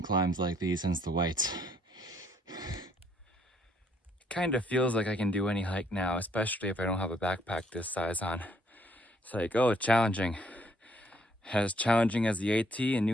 climbs like these since the whites. Kind of feels like I can do any hike now, especially if I don't have a backpack this size on. It's like, oh, challenging. As challenging as the AT in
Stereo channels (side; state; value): both; normal; correlation 0.67